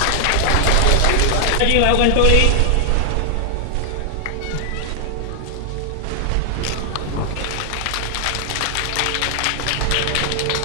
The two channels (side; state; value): both; different; correlation 0.00